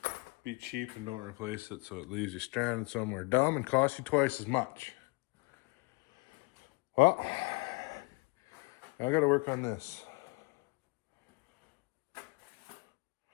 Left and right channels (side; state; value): right; quieter; 27.6 dB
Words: be cheap and don't replace it, so it leaves you stranded somewhere dumb and costs you twice as much. Well, I got to work on this.